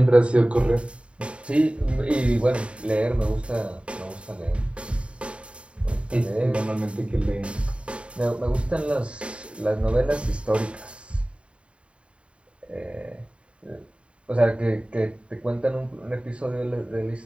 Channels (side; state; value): left; late; 0.059 ms